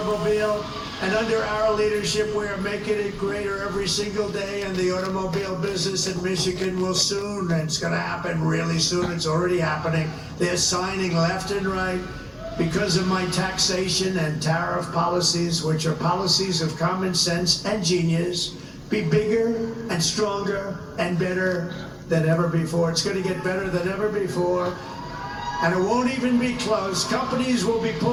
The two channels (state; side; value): identical; both; correlation 1.00